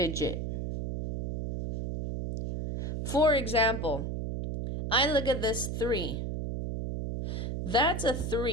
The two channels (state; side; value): noise; right; hum, 3 dB below the sound